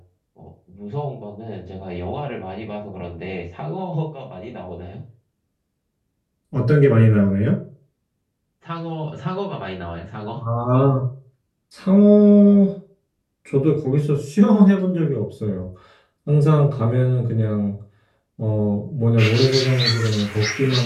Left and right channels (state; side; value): identical; both; correlation 1.00